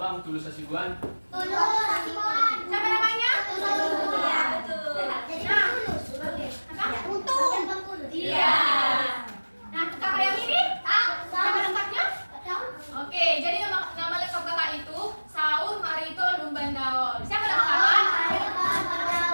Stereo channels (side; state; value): both; inverted; correlation -1.00